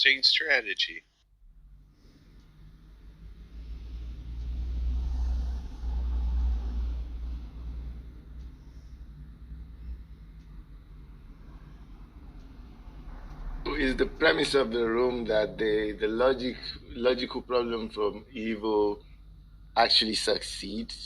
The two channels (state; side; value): identical; both; correlation 1.00